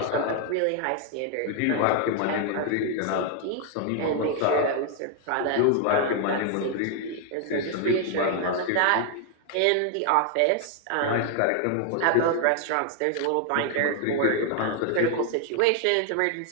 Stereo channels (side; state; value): both; different; correlation 0.00